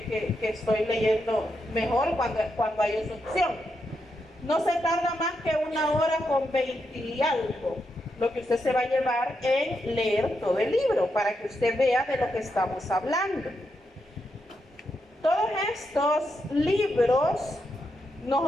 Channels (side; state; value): both; normal; correlation 0.83